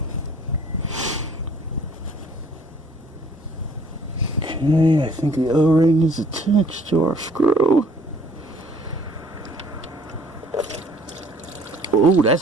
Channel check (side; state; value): both; normal; correlation 0.58